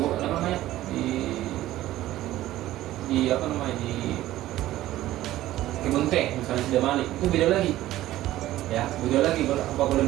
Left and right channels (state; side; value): quieter; left; 14.9 dB